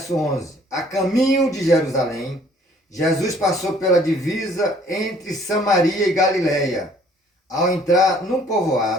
11. A caminho de Jerusalém, Jesus passou pela divisa entre Samaria e Galileia. Ao entrar num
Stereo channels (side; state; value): both; normal; correlation 0.58